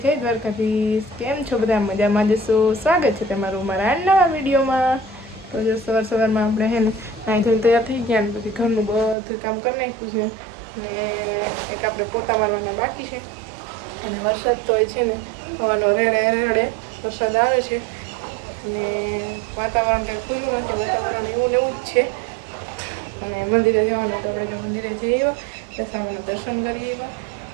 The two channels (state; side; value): drops out; left; at 9.2 s